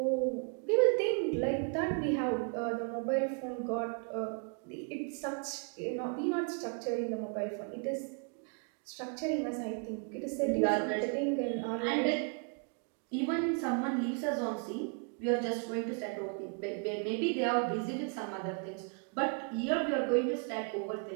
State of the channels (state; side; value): quieter; left; 38.9 dB